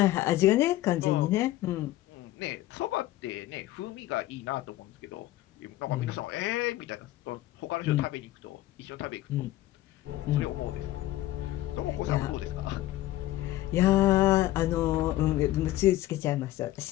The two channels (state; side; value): quieter; right; 15.5 dB